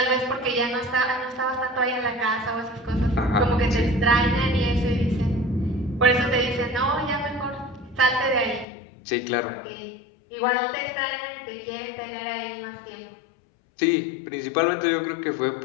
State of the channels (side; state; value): right; drops out; at 8.7 s